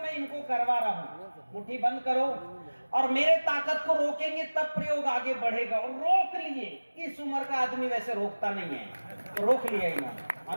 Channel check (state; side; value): inverted; both; correlation -1.00